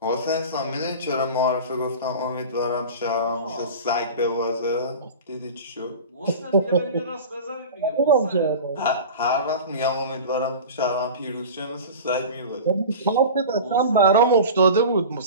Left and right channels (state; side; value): inverted; both; correlation -0.34